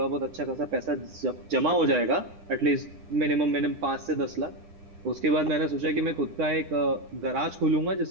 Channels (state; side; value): late; left; 9.9 ms